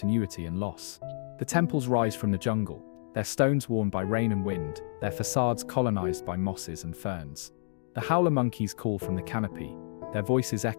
and loss. The temples rise from the jungle, their stones worn by rain and wind, their facades colonized by mosses and ferns. The howler monkeys call from the canopy, their voices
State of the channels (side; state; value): right; silent; digital silence